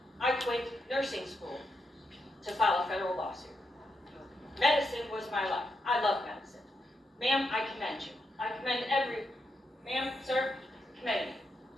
I quit nursing school to file a federal lawsuit. Medicine was my life. I love medicine. Ma'am, I commend you. I commend ma'am, sir, commend you.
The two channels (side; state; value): both; normal; correlation 0.83